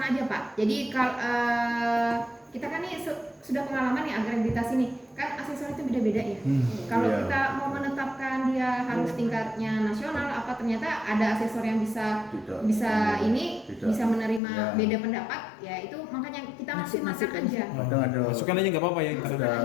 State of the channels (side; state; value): right; drops out; at 14.4 s